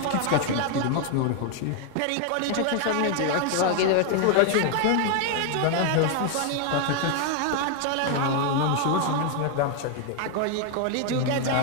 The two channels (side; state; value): both; different; correlation 0.00